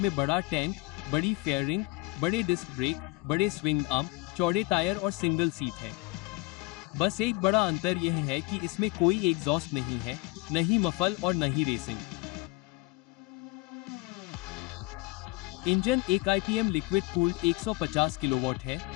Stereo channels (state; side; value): quieter; right; 22.5 dB